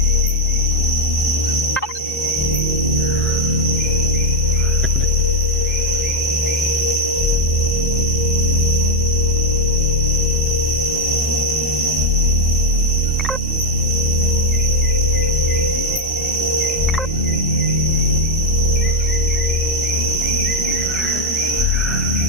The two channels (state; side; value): normal; both; correlation 0.04